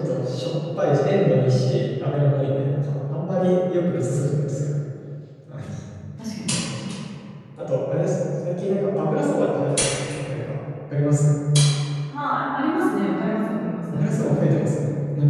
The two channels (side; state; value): both; identical; correlation 1.00